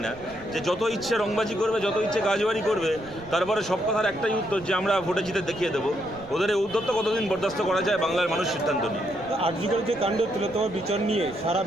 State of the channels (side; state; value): right; noise; rumble, 20 dB below the sound